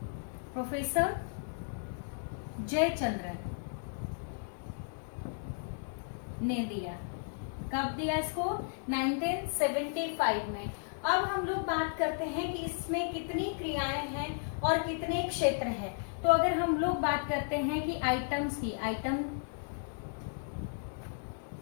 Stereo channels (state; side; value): silent; right; digital silence